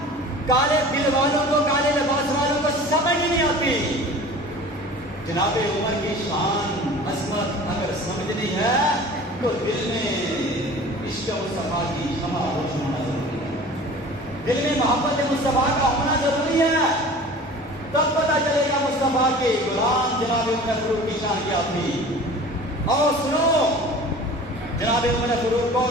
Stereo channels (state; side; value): normal; both; correlation 0.42